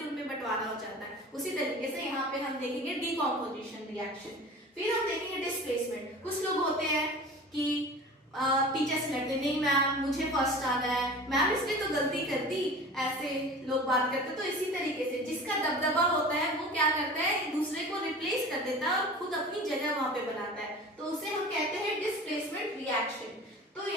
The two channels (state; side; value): normal; both; correlation 0.38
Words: उनमें बंटवारा हो जाता है, उसी तरीके से यहाँ पे हम देखेंगे डीकॉम्पोजिशन रिएक्शन। फिर हम देखेंगे डिस्प्लेसमेंट। कुछ लोग होते हैं कि टीचर से लड़ते, नहीं मैम मुझे फर्स्ट आ गया है, मैम इसने तो गलती कर दी, ऐसे लोग बात करते। तो इसी तरीके से जिसका दबदबा होता है वो क्या करता है, दूसरे को रिप्लेस कर देता है और खुद अपनी जगह वहां पे बनाता है, तो उसे हम कहते हैं डिस्प्लेसमेंट रिएक्शन। तो